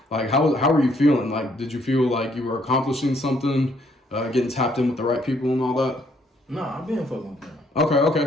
like how were you feeling? Like, did you feel like you were accomplishing something, getting tapped in with the right people and all that? Nah, I've been fucking with them.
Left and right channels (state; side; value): normal; both; correlation 0.68